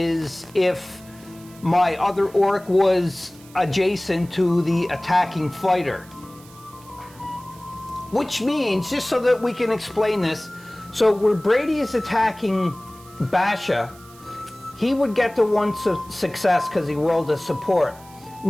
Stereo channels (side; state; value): right; noise; hiss, 24 dB below the sound